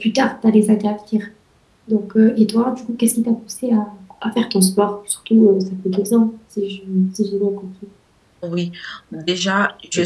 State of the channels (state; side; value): identical; both; correlation 1.00